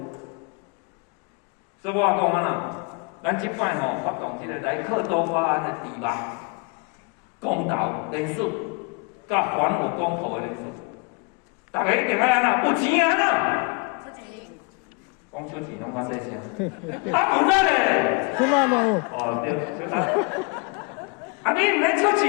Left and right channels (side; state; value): right; quieter; 31.8 dB